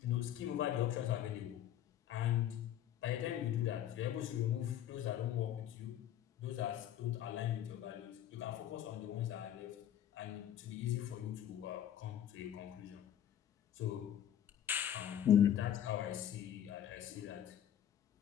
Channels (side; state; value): right; quieter; 10.7 dB